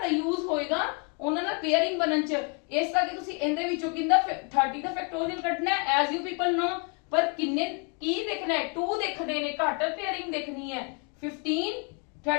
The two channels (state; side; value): quieter; right; 36.1 dB